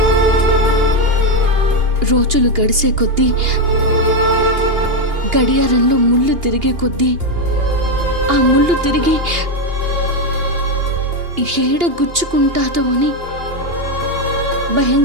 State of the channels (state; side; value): late; left; 2.8 ms